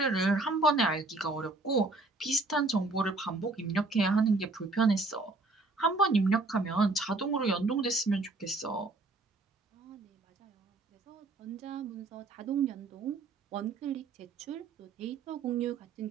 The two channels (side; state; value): left; quieter; 3.3 dB